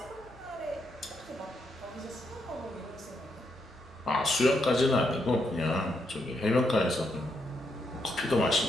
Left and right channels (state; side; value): normal; both; correlation 0.79